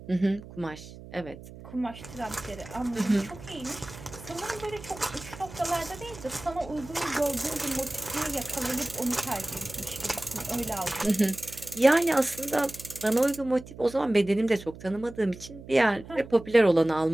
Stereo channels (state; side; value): noise; right; hum, 16 dB below the sound